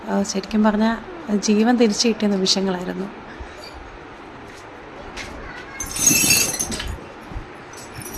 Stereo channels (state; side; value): identical; both; correlation 1.00